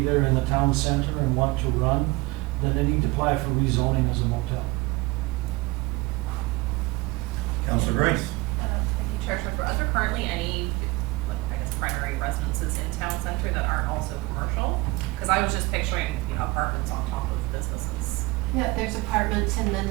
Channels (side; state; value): left; quieter; 22.1 dB